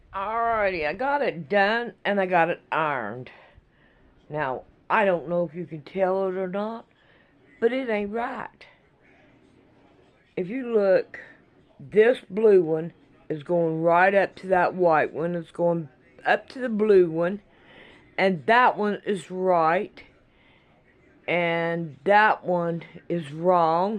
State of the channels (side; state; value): both; identical; correlation 1.00